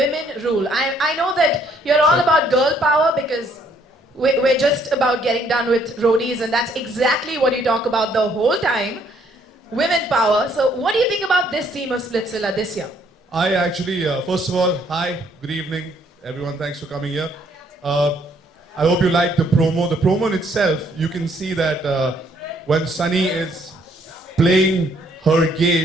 rule? I know that you're all about girl power because we're just about getting done with roadies, and that's exactly what you talk about the whole time, women power. So what do you think about this theme of Splitsvilla this year? I actually, first of all, hi, good evening, everyone. Thanks for coming here. I hope you like the promo. The promo in itself, you can see that when Sunny is playing her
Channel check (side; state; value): both; normal; correlation 0.66